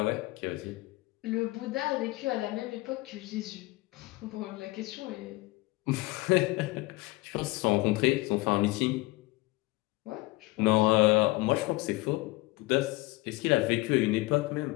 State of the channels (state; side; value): quieter; right; 21.7 dB